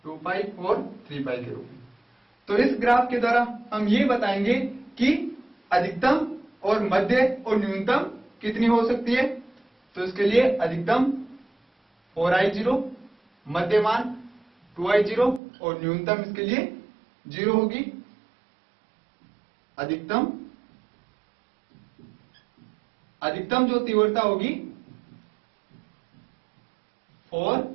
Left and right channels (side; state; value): left; drops out; at 15.4 s